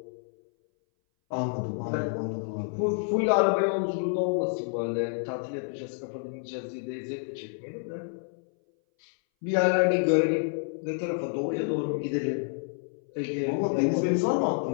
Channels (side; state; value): right; silent; 59 dB below the other